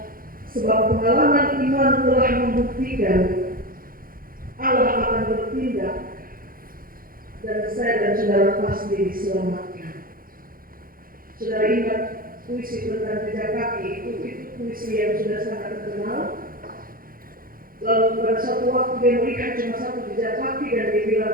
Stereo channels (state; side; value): late; left; 0.42 ms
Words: sebab pengalaman iman telah membuktikan Allah akan bertindak dan saya dan saudara pasti diselamatkan. Saudara ingat puisi tentang jejak kaki itu puisi yang sudah sangat terkenal. Lalu pada suatu waktu dia melihat cuma satu jejak kaki dan dia